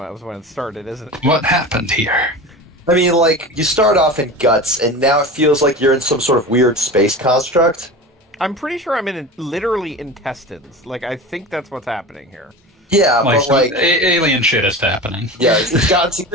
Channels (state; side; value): normal; both; correlation 0.31